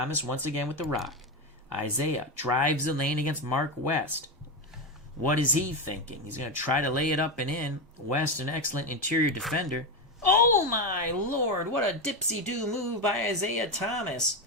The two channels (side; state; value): both; normal; correlation 0.13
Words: once again with the rock. Isaiah drives the lane against Mark West. What is he thinking? He's going to try to lay it up and in. West, an excellent interior defender. Oh my lord, what a dipsy-do move by Isaiah Thomas.